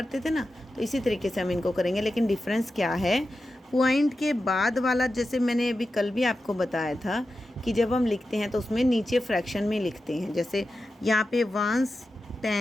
थे ना। तो इसी तरीके से हम इनको करेंगे, लेकिन डिफरेंस क्या है, पॉइंट के बाद वाला, जैसे मैंने अभी कल भी आपको बताया था कि जब हम लिखते हैं तो उसमें नीचे फ्रैक्शन में लिखते हैं। जैसे यहाँ पे 1s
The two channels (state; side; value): normal; both; correlation 0.92